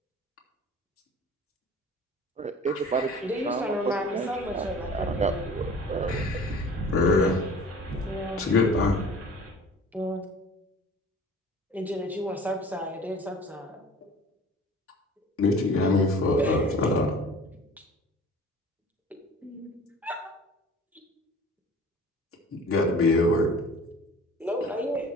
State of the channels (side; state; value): both; normal; correlation 0.45